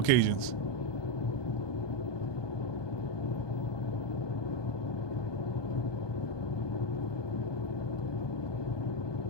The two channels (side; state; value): right; late; 1.2 ms